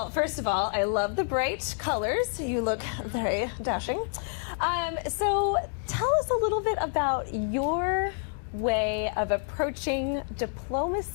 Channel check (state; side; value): silent; right; 59 dB below the other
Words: first of all, I love the bright colors. You look very dashing. So tell us a little bit about your way of approaching